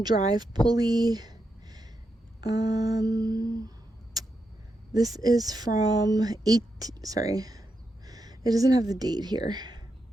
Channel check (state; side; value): normal; both; correlation 0.85